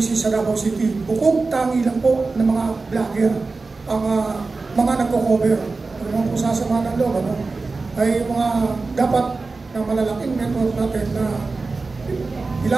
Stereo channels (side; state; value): left; quieter; 3.9 dB